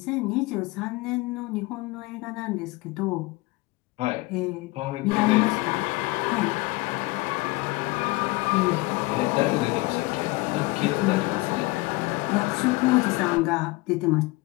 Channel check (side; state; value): right; quieter; 22.5 dB